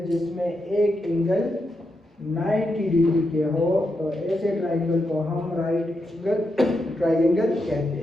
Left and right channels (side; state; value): both; normal; correlation 0.84